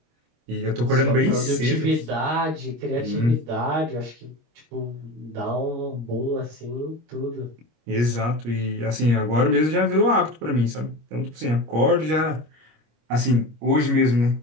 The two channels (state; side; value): late; left; 25 ms